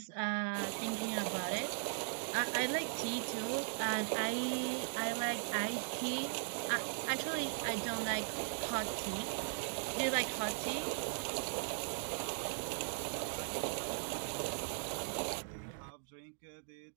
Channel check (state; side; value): silent; left; digital silence